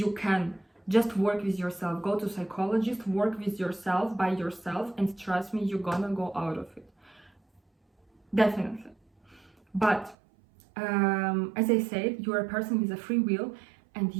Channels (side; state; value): left; drops out; at 10.2 s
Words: can. Just work with yourself, go to psychologist, work with yourself, by yourself, and trust me, you're gonna go out of it. Definitely. But as I said, you're a person with a free will, and